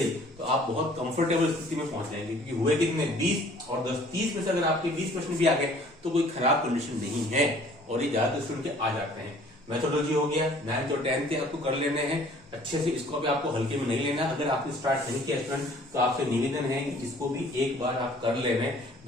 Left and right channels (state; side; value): normal; both; correlation 0.54